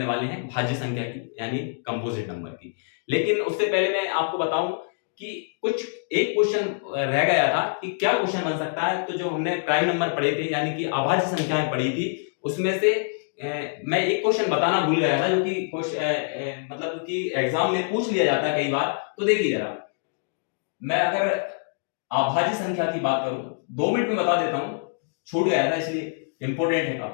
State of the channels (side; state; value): right; silent; digital silence